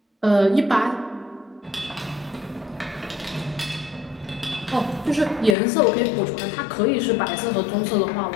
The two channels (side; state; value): right; drops out; at 5.6 s